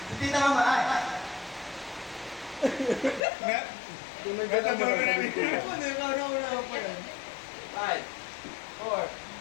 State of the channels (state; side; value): drops out; right; at 3.2 s